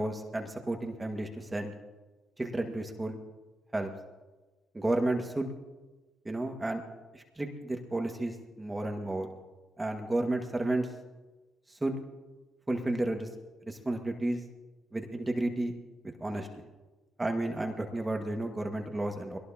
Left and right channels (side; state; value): both; normal; correlation 0.94